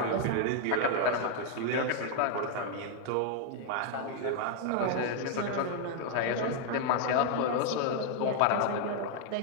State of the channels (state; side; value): different; both; correlation 0.00